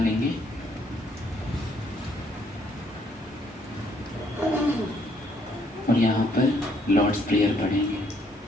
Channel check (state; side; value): normal; both; correlation 0.68